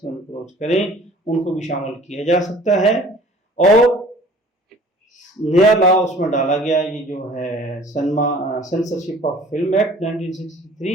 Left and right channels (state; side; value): normal; both; correlation 0.49